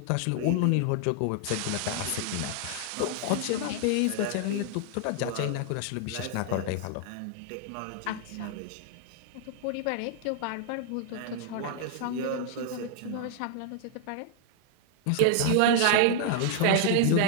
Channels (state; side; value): different; both; correlation 0.00